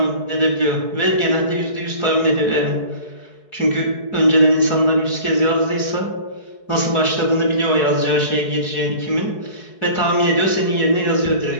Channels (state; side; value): late; right; 4.7 ms